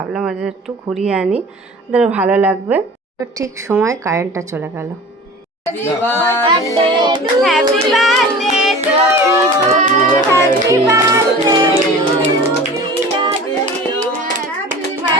ওদের একটু ঘুরিয়ে আনি, ওদের ভালো লাগবে। তো ঠিক সময় কারেন্টটা চলে গেল।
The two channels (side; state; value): both; normal; correlation 0.39